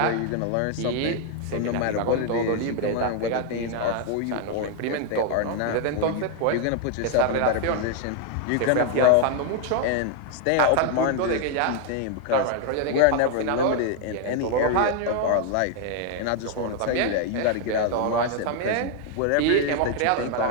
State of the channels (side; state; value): both; different; correlation 0.00